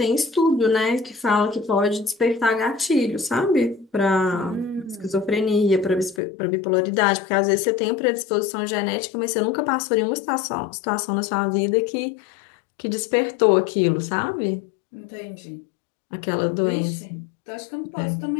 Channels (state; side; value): drops out; right; at 6.2 s